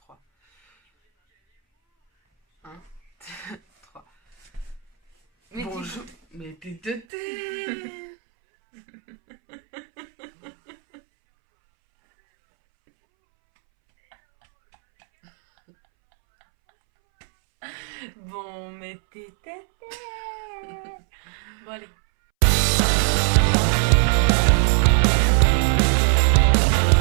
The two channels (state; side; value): drops out; left; at 7.1 s